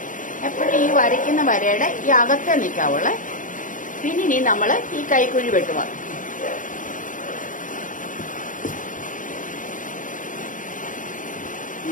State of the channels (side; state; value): right; late; 0.38 ms